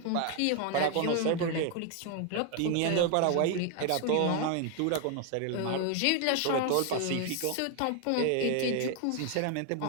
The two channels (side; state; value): both; different; correlation 0.01